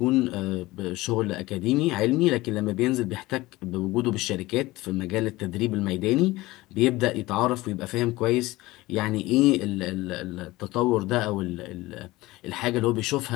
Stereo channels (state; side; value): quieter; right; 19.3 dB